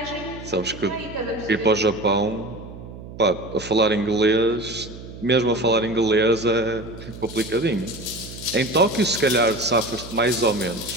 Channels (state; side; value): noise; right; hum, 14 dB below the sound